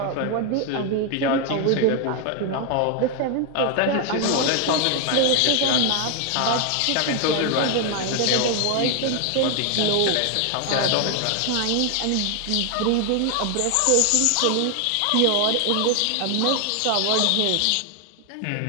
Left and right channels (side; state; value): both; different; correlation 0.00